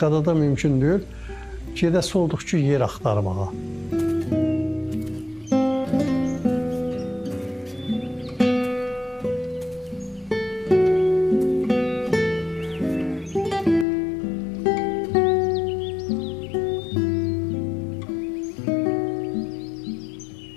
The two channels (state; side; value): drops out; right; at 13.9 s